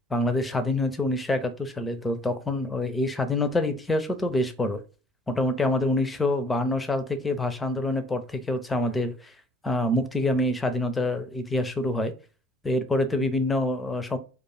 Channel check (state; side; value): normal; both; correlation 0.60